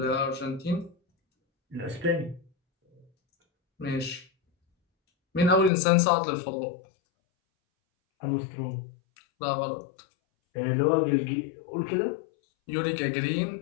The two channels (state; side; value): drops out; right; at 5.7 s